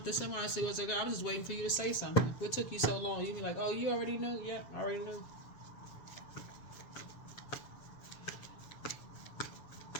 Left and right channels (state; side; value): late; right; 7.4 ms